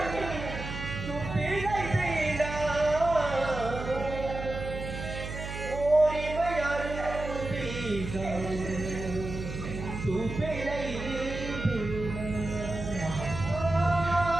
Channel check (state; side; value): noise; right; hum, 7 dB below the sound